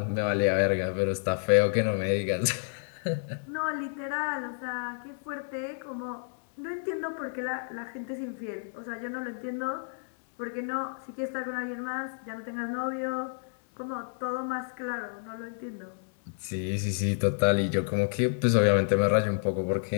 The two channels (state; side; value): silent; right; 58 dB below the other